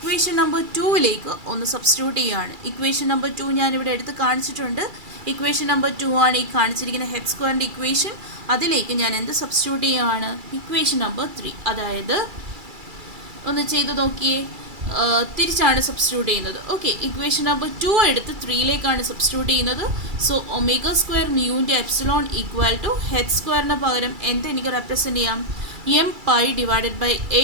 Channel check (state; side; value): late; left; 2.3 ms